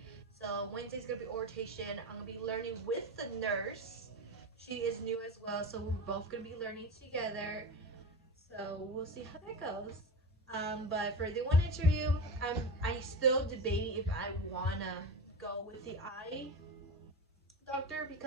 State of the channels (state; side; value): normal; both; correlation 0.23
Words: So Wednesday's gonna be orientation. I'm gonna be learning with the nurse. She is new as well, so we're both gonna be learning together. So we'll see how that goes. But for the one interview, I still debating if I wanna go with the eye doctor